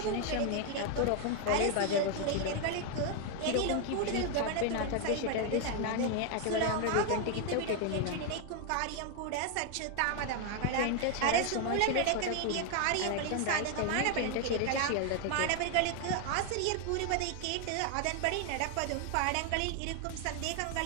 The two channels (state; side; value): different; both; correlation 0.00